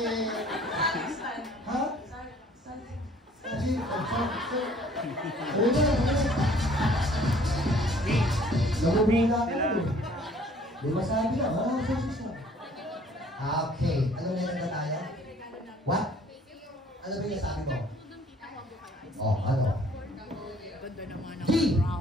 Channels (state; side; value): normal; both; correlation 0.56